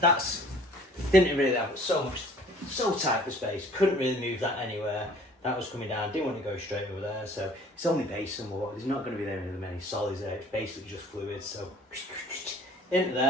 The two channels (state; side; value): normal; both; correlation 0.53